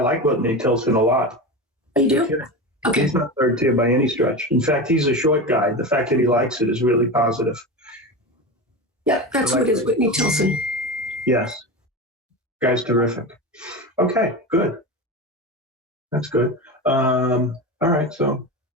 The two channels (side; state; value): both; normal; correlation 0.24